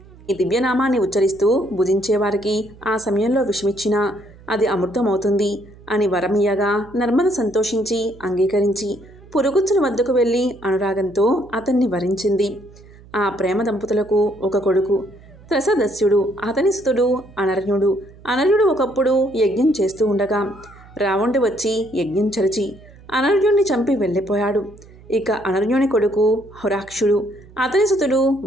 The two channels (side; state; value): right; noise; hum, 22 dB below the sound